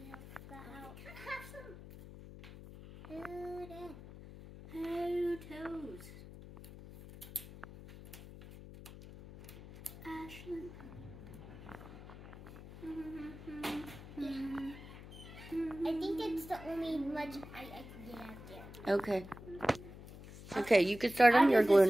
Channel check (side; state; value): left; noise; hum, 15 dB below the sound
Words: that out. Have some Good in. toes. Ashlyn. I think it's the only much I can get out there. Okay. Okay, you can start on your glue